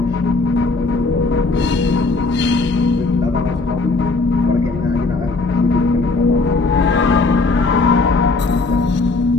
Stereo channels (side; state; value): right; quieter; 3.7 dB